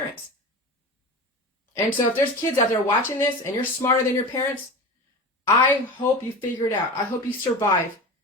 And so if there's kids out there watching this and you're smarter than your parents, I hope you figure it out. I hope you survive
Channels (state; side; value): normal; both; correlation 0.30